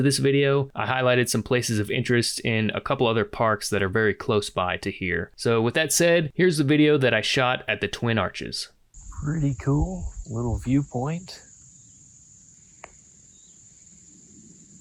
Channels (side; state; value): both; identical; correlation 1.00